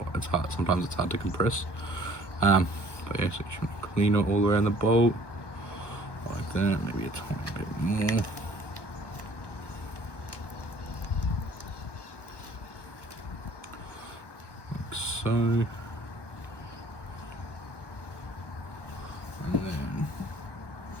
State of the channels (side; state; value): right; late; 1.2 ms